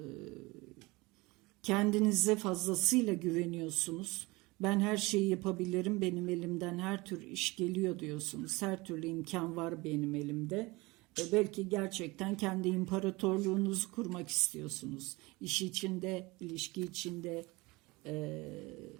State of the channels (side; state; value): left; quieter; 23.1 dB